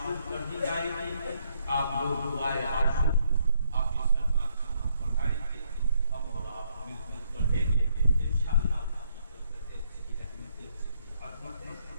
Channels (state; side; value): inverted; both; correlation -0.73